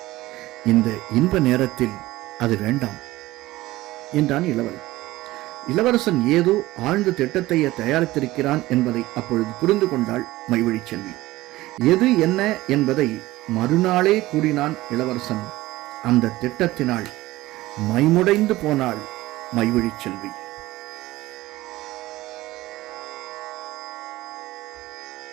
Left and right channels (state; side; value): quieter; left; 17.7 dB